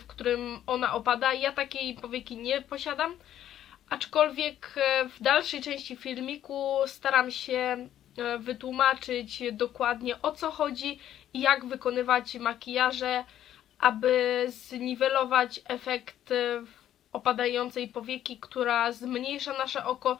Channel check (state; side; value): quieter; right; 11.4 dB